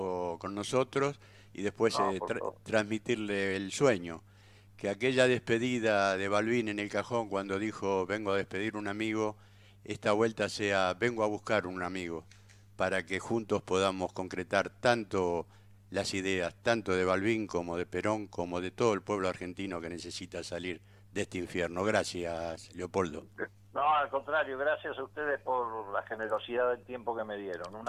con nosotros y después por favor. transmitirle el sueño. Que aquella despedida de Balbín en el cajón cuando dijo vengo a despedir un amigo, esta vuelta sea vengo a buscar un amigo, para que juntos podamos concretar tanto las ideas, tanto de Balbín como de Perón, como de todo el pueblo argentino que necesita salir de este infierno. Gracias, Leopoldo. No, al contrario, gracias a ustedes por la generosidad del tiempo que me dieron. Un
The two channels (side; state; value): both; identical; correlation 1.00